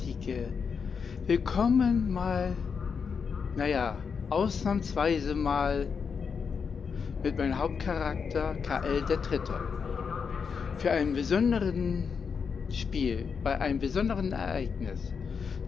Willkommen ausnahmsweise mal mit meinem Hauptcharakter Kal-El der Dritte. Für einen besonderen Spiel, bei einem besonderen Ereignis.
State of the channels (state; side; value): quieter; right; 6.0 dB